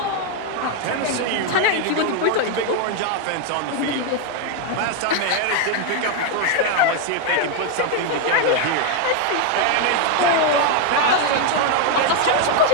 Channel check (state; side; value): different; both; correlation 0.01